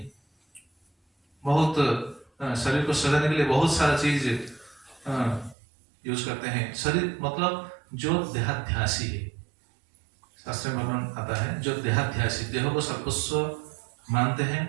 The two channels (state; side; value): drops out; left; at 5.6 s